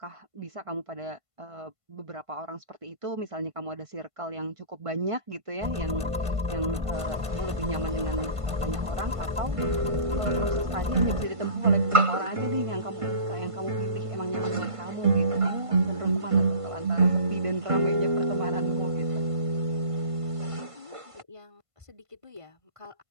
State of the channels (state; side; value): late; left; 1.5 ms